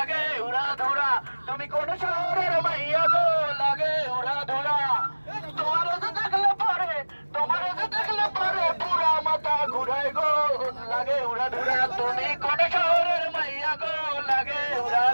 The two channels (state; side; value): inverted; both; correlation -1.00